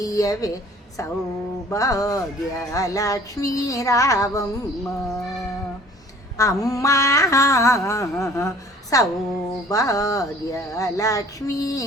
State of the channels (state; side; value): normal; both; correlation 0.52